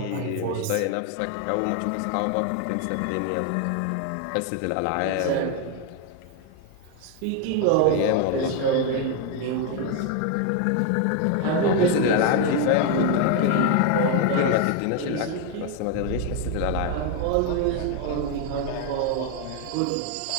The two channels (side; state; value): both; different; correlation 0.01